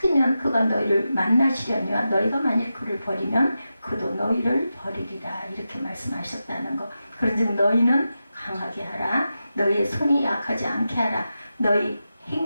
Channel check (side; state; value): both; inverted; correlation -0.91